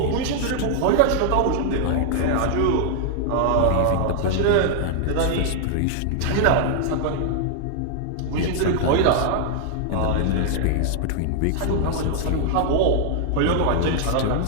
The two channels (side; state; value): both; different; correlation 0.00